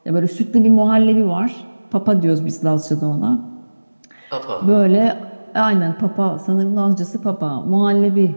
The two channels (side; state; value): both; inverted; correlation -1.00